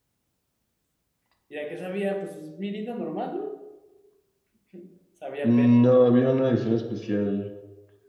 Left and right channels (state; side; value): identical; both; correlation 1.00